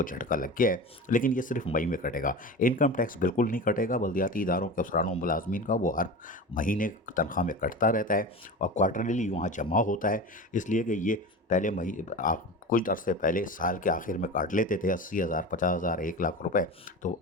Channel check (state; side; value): normal; both; correlation 0.29